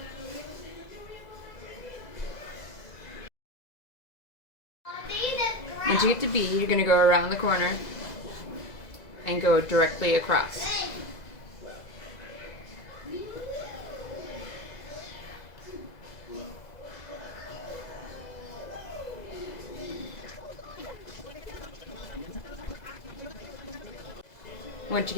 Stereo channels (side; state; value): right; late; 2.0 ms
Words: Once you get to B, you're going to go around the corner and go directly across. Once you